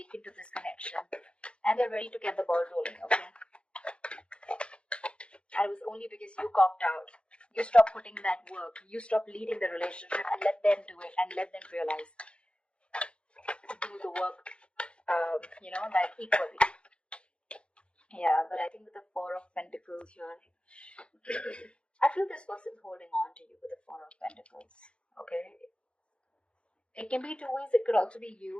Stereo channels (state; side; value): late; right; 0.058 ms